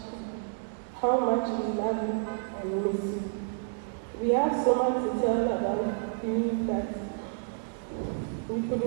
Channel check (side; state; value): left; silent; digital silence